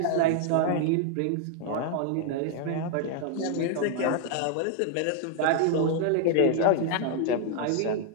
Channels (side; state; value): both; different; correlation 0.00